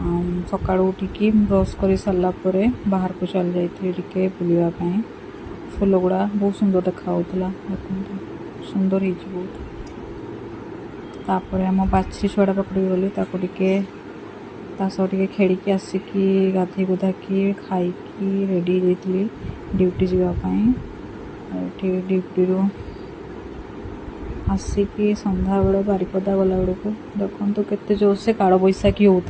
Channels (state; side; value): identical; both; correlation 1.00